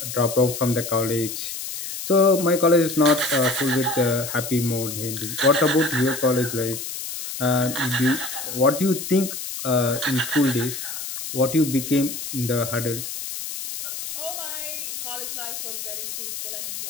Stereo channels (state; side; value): noise; left; hiss, 7 dB below the sound